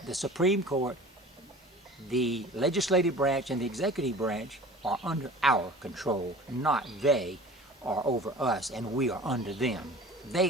the Supreme Court, the legislative branch and the executive branch are under our control, not they are over us and we are under them.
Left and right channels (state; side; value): normal; both; correlation 0.42